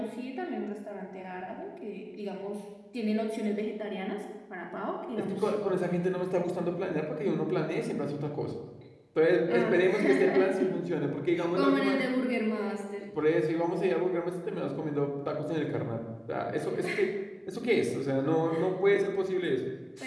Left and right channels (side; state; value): both; identical; correlation 1.00